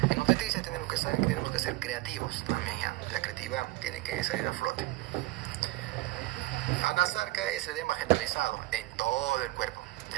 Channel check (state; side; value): quieter; left; 19.7 dB